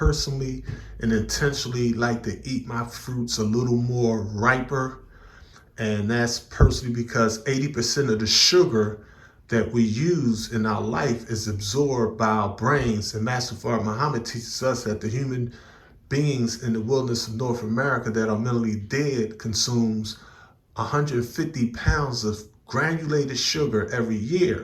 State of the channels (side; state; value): both; identical; correlation 1.00